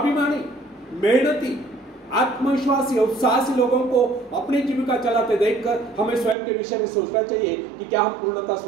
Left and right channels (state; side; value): drops out; left; at 6.4 s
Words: मेहनती, आत्मविश्वासी और साहसी लोगों को अपनी जीविका चलाते देखकर हमें स्वयं के विषय में सोचना चाहिए कि क्या हम पूर्णतः